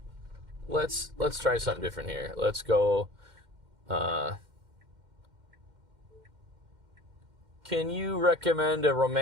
Let's try something different here. Let's go... Can you recommend a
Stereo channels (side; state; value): left; late; 2.1 ms